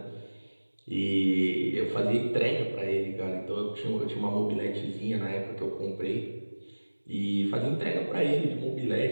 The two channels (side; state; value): both; inverted; correlation -1.00